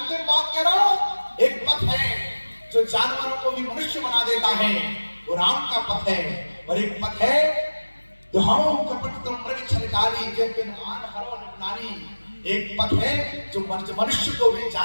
बात कह रहा हूं, एक पथ है जो जानवरों को भी मनुष्य बना देता है, वो राम का पथ है। और एक पथ है जो हम कपट तुम मृग छलकारी जैसे नुमान हरो निपुणानी। एक पथ है जो मनुष्य को भी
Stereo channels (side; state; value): both; inverted; correlation -1.00